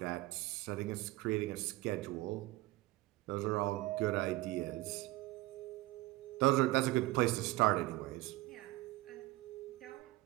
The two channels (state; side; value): quieter; left; 19.1 dB